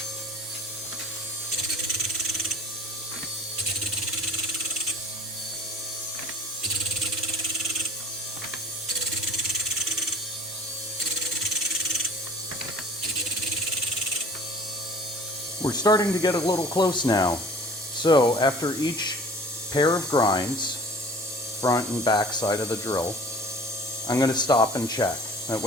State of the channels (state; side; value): normal; both; correlation 0.47